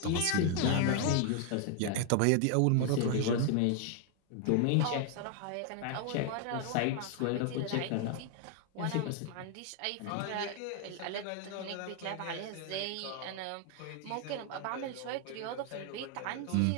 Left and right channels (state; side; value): different; both; correlation 0.00